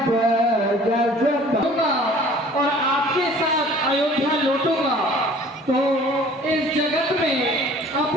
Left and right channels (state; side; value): normal; both; correlation 0.50